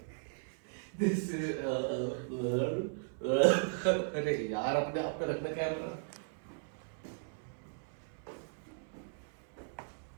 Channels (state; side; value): silent; left; 53 dB below the other